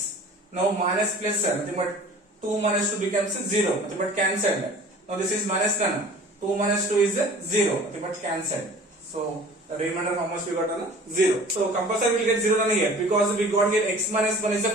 Now minus plus nothing but 2 minus 2 becomes 0. Nothing but cancelled. Now this is minus nana. 2 minus 2 is 0. Nothing but cancelled. So the remainder how much we got on 0. So compulsory will get 0 on here because we got here x minus 1 is a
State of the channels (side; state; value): both; normal; correlation 0.45